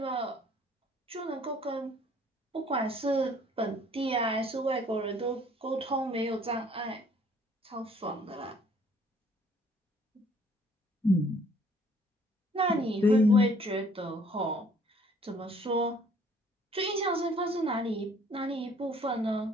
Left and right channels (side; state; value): both; normal; correlation 0.59